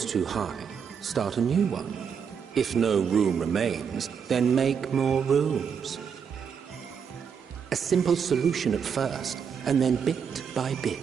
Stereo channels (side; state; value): left; quieter; 7.0 dB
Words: too high, start a new one. If no room remains, then make more rooms. A simple solution at first, and then bit by